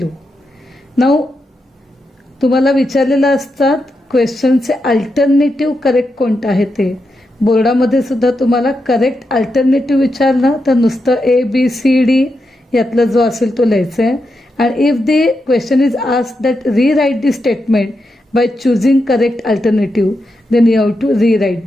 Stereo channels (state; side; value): normal; both; correlation 0.86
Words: Now तुम्हाला विचारलेलं असतात क्वेश्चनचे alternative correct कोणतं आहे ते. बोर्डामध्ये सुद्धा तुम्हाला correct alternative विचारलं तर नुसतं ABCD यातला जो असेल तो लिहायचा आहे. And if the question is asked that rewrite the statement by choosing correct alternative, then you have to rewrite